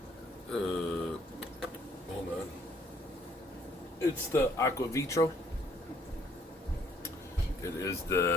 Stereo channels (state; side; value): normal; both; correlation 0.64